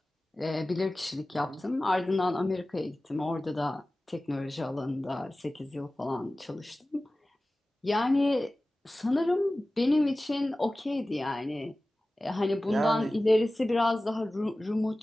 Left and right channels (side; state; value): both; normal; correlation 0.97